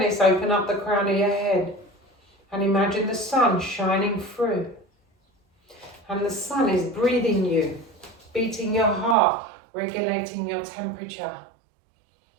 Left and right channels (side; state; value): left; drops out; at 9.2 s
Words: open up the crown of your head. And imagine the sun shining through. And the sun is breathing you, beating your heart, regulating your temperature.